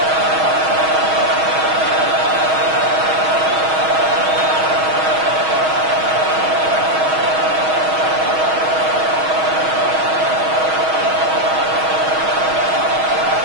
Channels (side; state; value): left; late; 6.3 ms